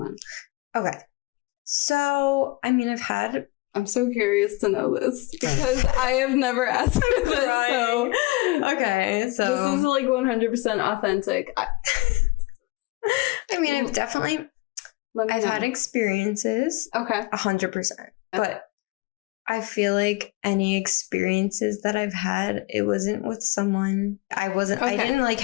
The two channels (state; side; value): quieter; right; 22.4 dB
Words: Okay. So, I mean, I've had... I'm so curious to know this because I have never asked for this. Right. So, okay, so this is like 100% authentic. I mean, I've had experiences. Okay. 100%. But I feel like any experiences that I've had, it wasn't with someone. I didn't like